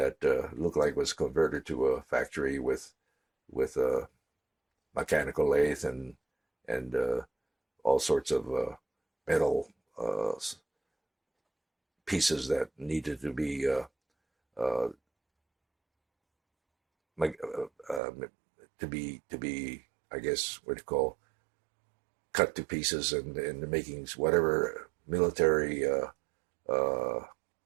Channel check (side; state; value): left; drops out; at 18.0 s